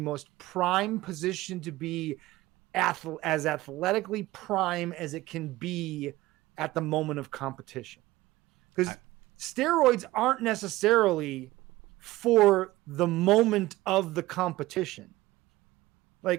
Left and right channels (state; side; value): quieter; left; 17.9 dB